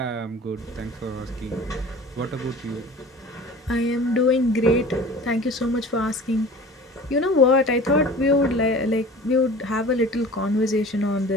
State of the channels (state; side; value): normal; both; correlation 0.41